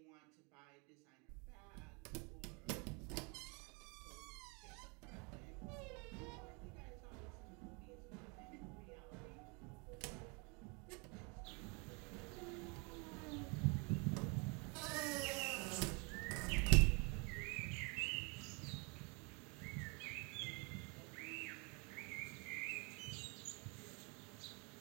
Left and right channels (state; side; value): quieter; left; 31.8 dB